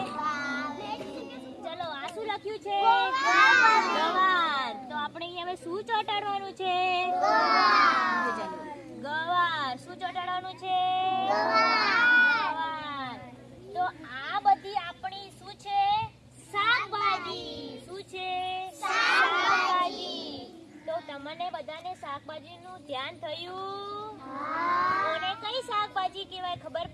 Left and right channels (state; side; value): identical; both; correlation 1.00